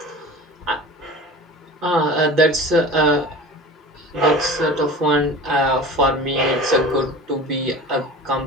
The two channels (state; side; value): normal; both; correlation 0.36